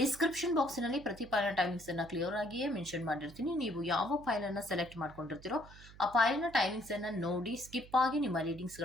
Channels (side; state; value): right; noise; hum, 19 dB below the sound